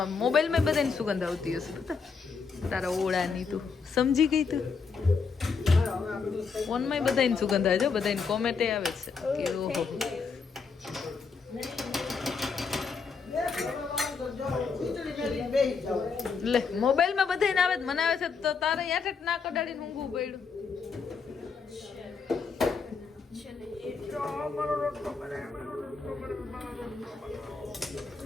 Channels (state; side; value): quieter; right; 5.2 dB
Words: મોબાઈલમાં બધાની સુગંધ આવતી હશે પતા તારા ઓળાની. તું સમજી ગઈ તું? ફોનમાં બધાની સુગંધ આવે છે, બધાની કોમેન્ટે આવે છે કે ઓહો. લે મોબાઈલમાં બધાને આવે મને આવે છે તો તારે યાદ જ ના કડાડીને ઊંઘવું પડ્યું.